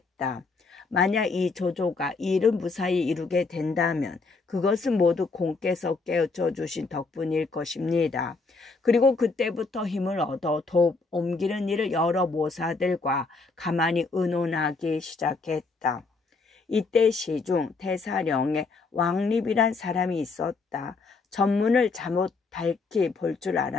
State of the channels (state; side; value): quieter; right; 4.1 dB